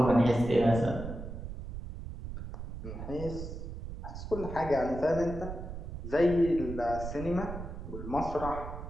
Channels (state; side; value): noise; right; rumble, 8 dB below the sound